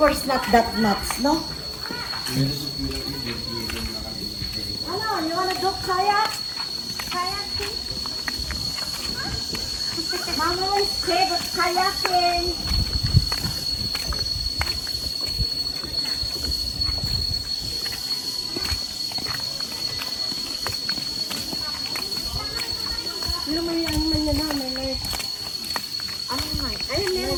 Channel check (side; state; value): both; identical; correlation 1.00